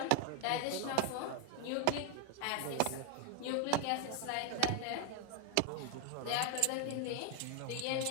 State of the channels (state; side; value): different; both; correlation 0.00